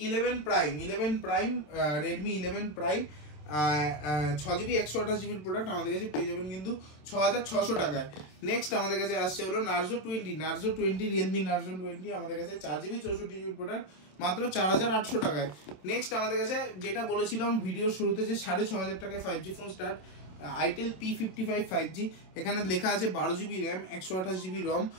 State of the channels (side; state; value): right; late; 27 ms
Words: 11 prime Redmi 11 prime 6GB 128GB product আমাদের কাছে পেয়ে যাবেন কিন্তু 6600 টাকায়। নেক্সট আমাদের কাছে আসছে হলো নার্জো 20 রিয়েলমি নার্জো 20 আমাদের কাছে 4GB 64GB প্রোডাক্ট মাত্র 4800 টাকায়। নেক্সট আমাদের কাছে যেটা বলেছিলাম ভিডিওর শুরুতে যে 6500 টাকায় 5G phone start, itel P55 5G, এখানে লেখা আছে 12GB র্যাম 128GB রম,